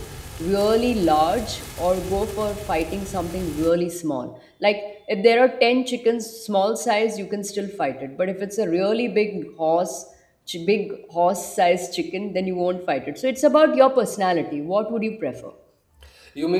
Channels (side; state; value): both; identical; correlation 1.00